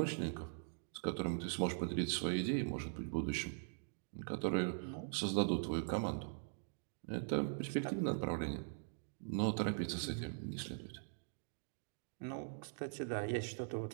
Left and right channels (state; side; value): silent; left; digital silence